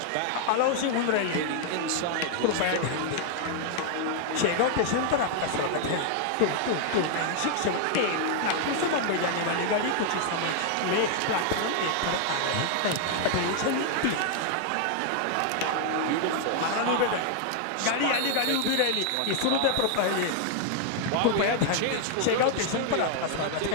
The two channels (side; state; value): both; different; correlation 0.00